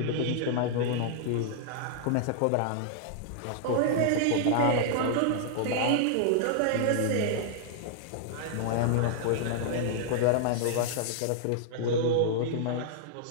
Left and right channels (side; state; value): both; different; correlation -0.01